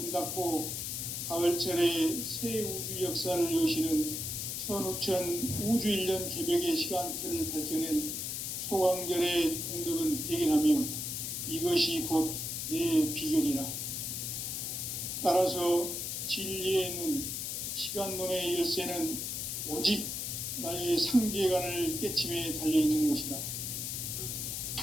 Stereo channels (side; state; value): left; noise; hiss, 3 dB below the sound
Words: 닫고 가을철에 새 우주 역사를 여시는 선우천 우주 1년 개벽의 시간틀을 밝혀낸 소강절의 공덕은 대견하며 이것이 곧 내 비결이라. 따라서 진리의 눈, 시간론의 열쇠는 오직 나의 상제관을 깨침에 달려있는 것이다.